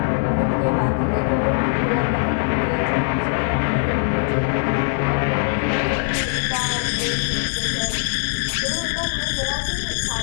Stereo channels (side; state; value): right; silent; 65 dB below the other